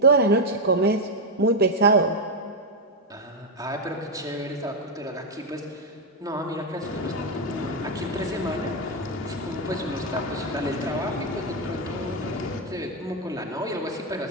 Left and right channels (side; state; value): both; normal; correlation 0.03